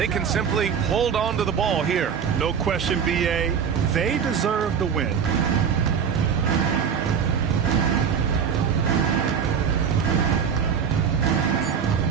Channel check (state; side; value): quieter; left; 7.2 dB